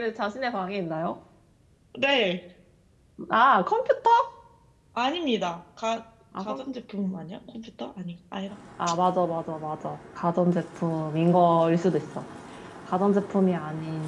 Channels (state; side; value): identical; both; correlation 1.00